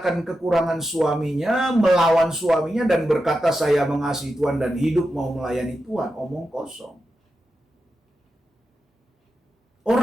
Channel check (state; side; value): normal; both; correlation 0.89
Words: kekurangan suaminya, melawan suaminya dan berkata saya mengasihi Tuhan dan hidup mau melayani Tuhan. Omong kosong.